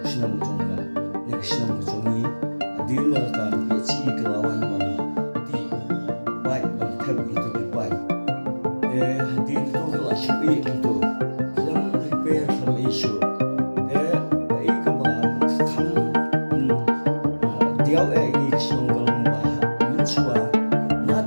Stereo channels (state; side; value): inverted; both; correlation -1.00